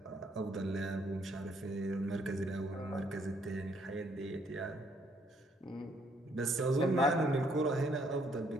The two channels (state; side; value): normal; both; correlation 0.68